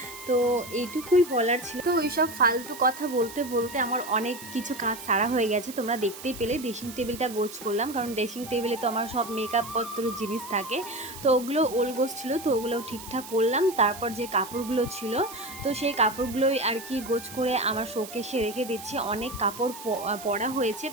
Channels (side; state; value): right; noise; hiss, 14 dB below the sound